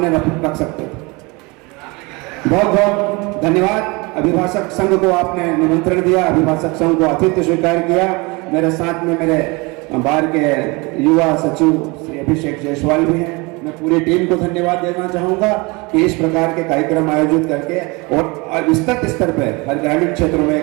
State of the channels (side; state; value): left; quieter; 26.5 dB